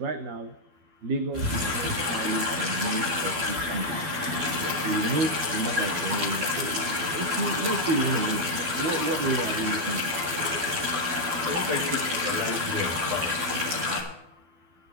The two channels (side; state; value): left; late; 12 ms